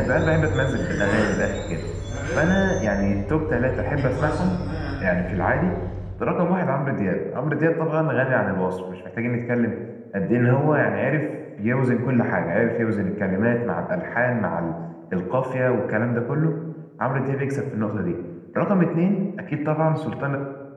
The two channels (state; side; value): identical; both; correlation 1.00